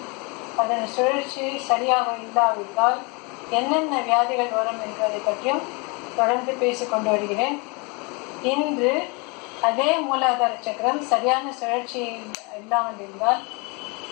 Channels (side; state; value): right; quieter; 30.2 dB